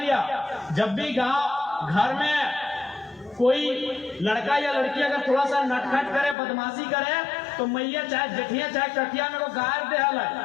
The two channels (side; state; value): right; drops out; at 6.4 s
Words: जब भी गांव घर में कोई लड़का या लड़की अगर थोड़ा सा नटखट करे, बदमाशी करे, तो मैया चाहे जेठिया चाहे कटिया में वो गायर दे हल